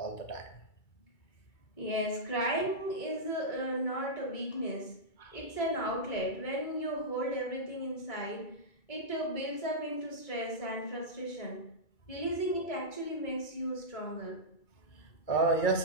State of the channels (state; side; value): late; right; 2.3 ms